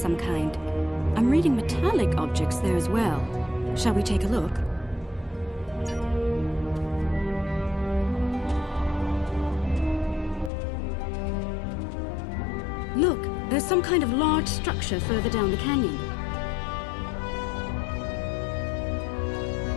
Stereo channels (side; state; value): right; drops out; at 10.5 s